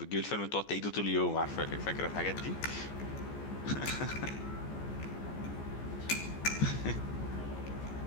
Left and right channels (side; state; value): right; late; 14 ms